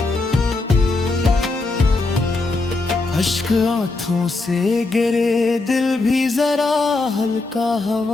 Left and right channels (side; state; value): right; quieter; 3.4 dB